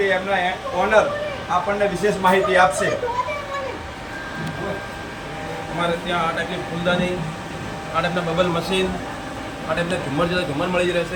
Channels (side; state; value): both; identical; correlation 1.00